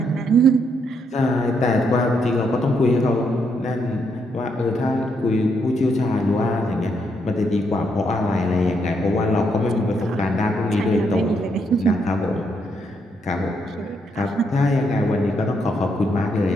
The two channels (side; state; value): both; normal; correlation 0.76